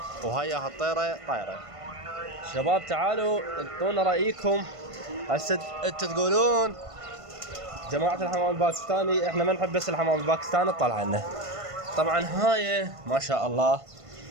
وهاي الطيرة طايرة. شباب تعالوا انطونا رأيكم. هسه انتوا تقولون جماعة الحمام الباكستاني احنا ما نحب بس الحمام الباكستاني تطلع لنا. طبعا هاي ما شاء الله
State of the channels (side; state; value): left; late; 1.5 ms